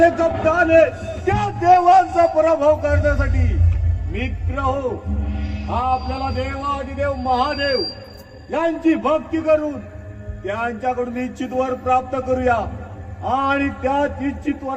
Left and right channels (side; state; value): both; identical; correlation 1.00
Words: कप्ताने त्या देवांचा पराभव करण्यासाठी मित्र हो, आपल्याला देवाधिदेव महादेव यांची भक्ती करून त्यांच्याकडून इच्छित वर प्राप्त करूया आणि त्या इच्छित